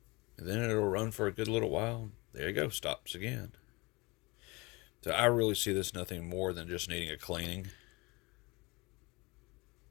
And then it'll run for a good little while. There you go, stops again. So I really see this nothing more than just needing a cleaning.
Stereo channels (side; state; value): right; quieter; 25.1 dB